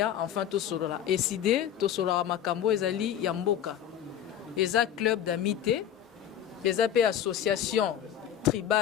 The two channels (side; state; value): right; quieter; 10.0 dB